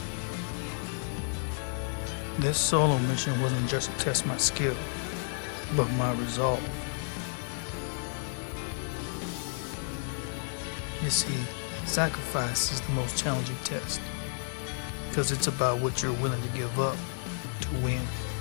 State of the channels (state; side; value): silent; right; digital silence